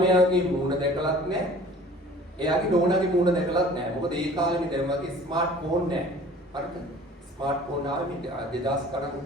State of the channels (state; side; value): normal; both; correlation 0.47